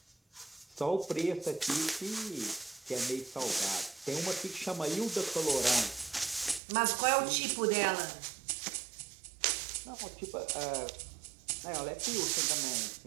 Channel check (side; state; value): left; drops out; at 6.6 s